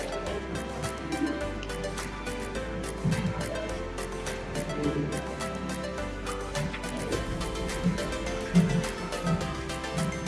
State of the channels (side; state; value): both; identical; correlation 1.00